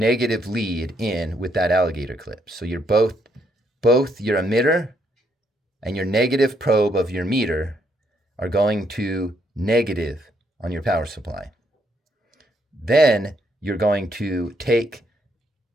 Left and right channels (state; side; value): normal; both; correlation 0.74